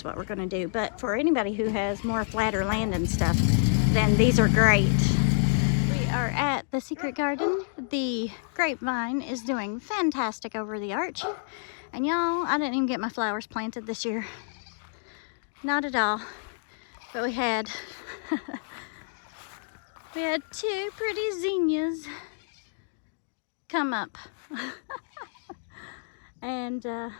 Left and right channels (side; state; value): right; silent; digital silence